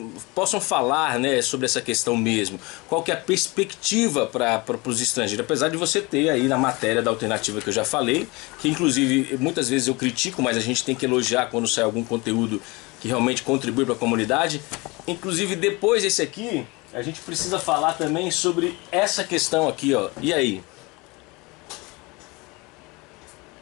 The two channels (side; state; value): right; quieter; 25.2 dB